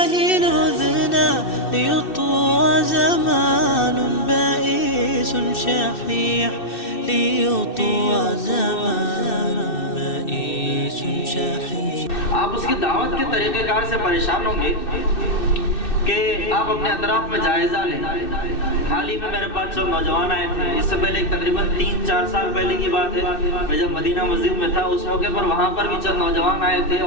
نذنا ليطوى زمان بائس شحيح ليطوى زمان بائس شحيح. آپ اس کی دعوت کے طریقہ کار سے پریشان ہوں گے کہ آپ اپنے اطراف میں جائزہ لیں. حال ہی میں میرے پاس جو نوجوان آئے تھے، اس سے پہلے تقریباً 3-4 سال پہلے کی بات ہے، میں جب مدینہ مسجد میں تھا اس موقع پر وہاں پر بھی چند نوجوان آئے تھے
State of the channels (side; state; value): right; late; 2.6 ms